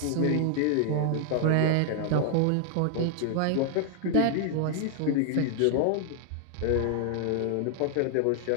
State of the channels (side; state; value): both; different; correlation 0.00